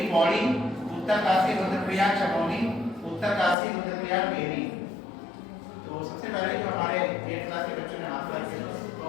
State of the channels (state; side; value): drops out; right; at 3.6 s